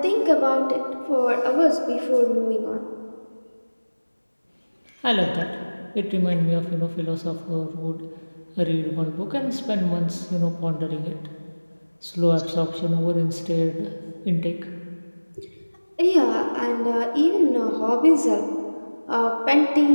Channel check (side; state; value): both; inverted; correlation -1.00